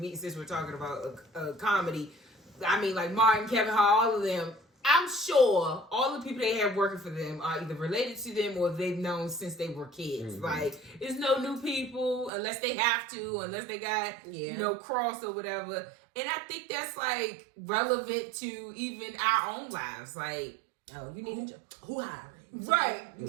since we're talking about comedy, I mean, like Martin, Kevin Hart, all of them, I'm sure all the people they have working for them are either related to them or they've known since they were kids. Mm-hmm. Like, there's no new people unless they have to, unless they got, you know, crossed or whatever. And I think that's, like, relevant to even our own lives. Like, oh, you need a job. Who hiring? Right.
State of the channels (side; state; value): left; drops out; at 12.3 s